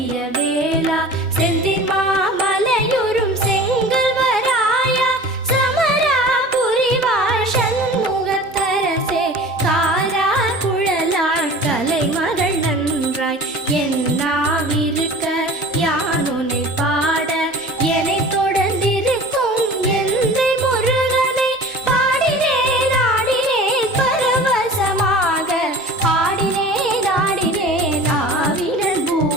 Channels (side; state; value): both; normal; correlation 0.40